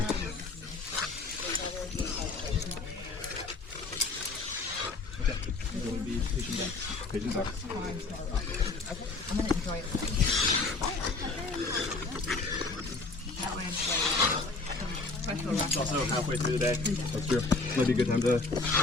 Pigeons up. I'm gonna enjoy it. That way it's like It's also halfway through the day. That's true. Might be a good time to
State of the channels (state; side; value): quieter; right; 3.7 dB